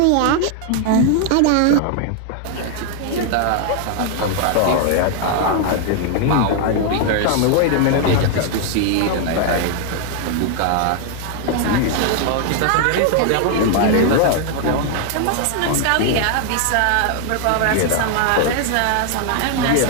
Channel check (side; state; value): both; different; correlation 0.00